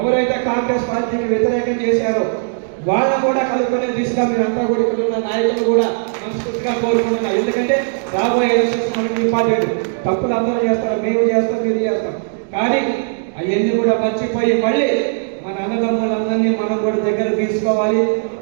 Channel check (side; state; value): left; silent; digital silence